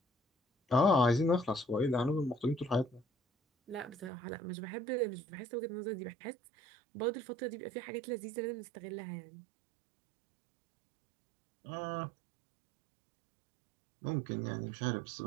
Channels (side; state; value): left; drops out; at 4.1 s